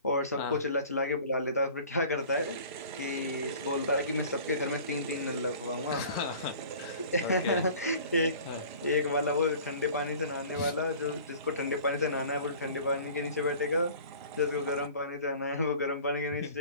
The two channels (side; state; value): both; inverted; correlation -0.45